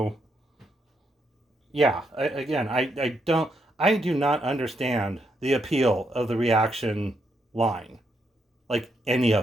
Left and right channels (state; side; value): normal; both; correlation 0.78